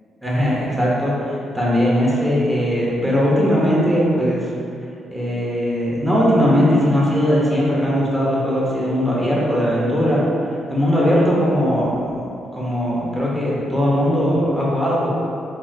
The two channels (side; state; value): both; normal; correlation 0.80